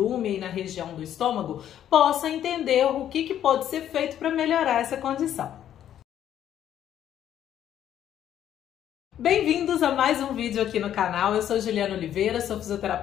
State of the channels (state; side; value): quieter; right; 10.7 dB